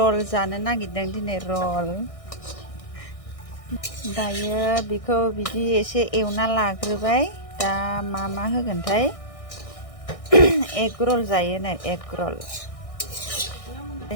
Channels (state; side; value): late; right; 1.6 ms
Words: जानो नागिरदों दिनै रल दायो बेखौ बिदि एसे एवना लाग्रोबाय दा मा होगोनथाय एग रल जायो नै एग रल